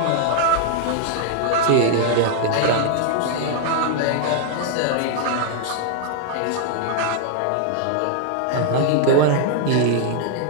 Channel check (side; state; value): both; different; correlation -0.01